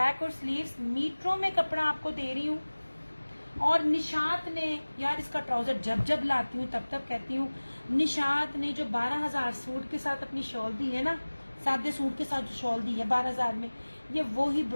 और स्लीव्स, मीटरों में कपड़ा आपको दे रही हूँ। और निशात ने, यार इसका ट्राउजर जब जब लाती हूँ तब तब कहती हूँ, निशात ने जो 12,000 सूट के साथ अपनी शॉल दी है ना, सादे सूट के साथ जो शॉल दी है 12,000 में, ये वो ही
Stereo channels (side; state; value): both; inverted; correlation -1.00